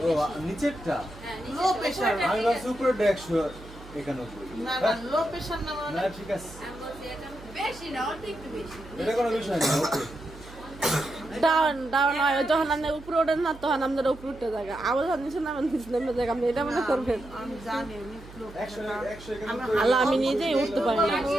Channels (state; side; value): noise; right; hum, 18 dB below the sound